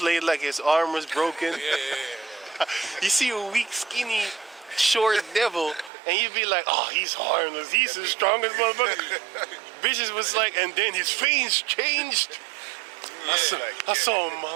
like his arm was broken. Yeah. You see a weak, skinny, short devil, and you'd be like, oh, he's harmless. He's the strongest motherfucker. Bitches was like, and then his face changed. I saw a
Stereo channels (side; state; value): left; drops out; at 5.9 s